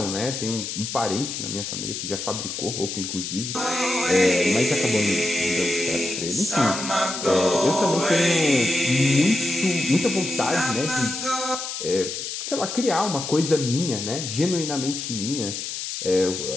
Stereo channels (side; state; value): left; noise; hiss, 5 dB below the sound